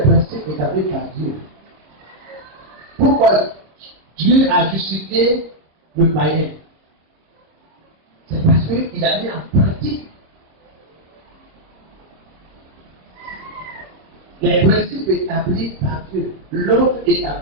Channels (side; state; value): left; late; 25 ms